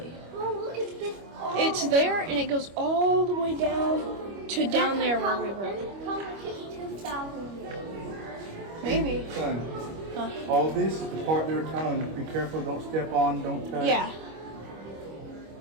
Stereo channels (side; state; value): left; late; 25 ms